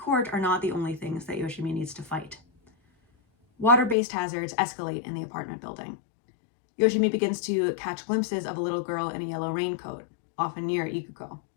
are not the only things that Yoshimi needs to fight. Water-based hazards escalate in the apartment building. Yoshimi begins to catch glimpses of a little girl in a yellow raincoat, often near Ikuko.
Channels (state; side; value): drops out; right; at 4.0 s